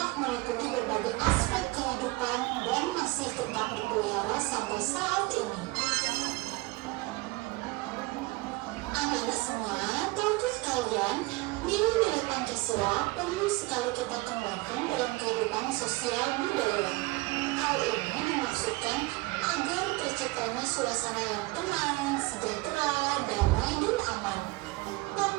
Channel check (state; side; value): quieter; left; 22.6 dB